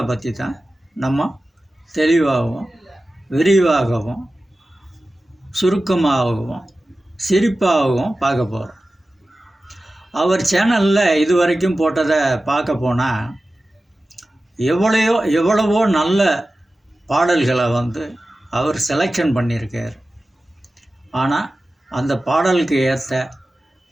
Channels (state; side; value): normal; both; correlation 0.95